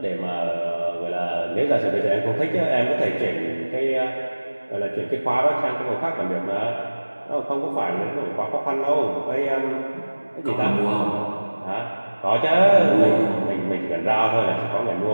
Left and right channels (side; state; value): both; inverted; correlation -1.00